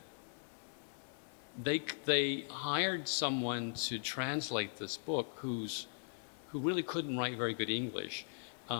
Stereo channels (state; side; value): silent; right; digital silence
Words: they hired someone to translate this book who really couldn't write very good English.